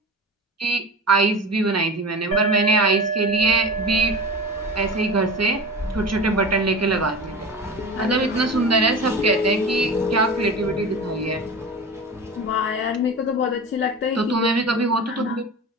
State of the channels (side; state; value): both; normal; correlation 0.31